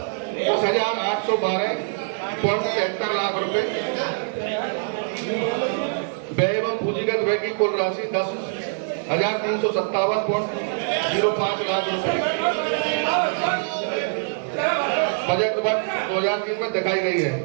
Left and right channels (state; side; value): silent; left; 56 dB below the other